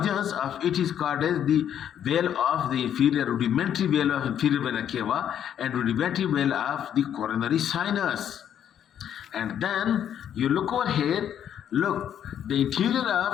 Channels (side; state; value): right; quieter; 9.6 dB